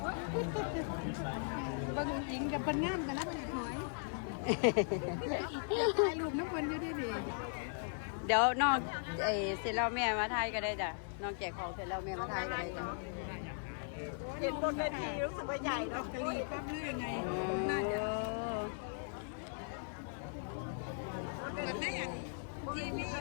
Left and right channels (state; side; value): silent; right; 52 dB below the other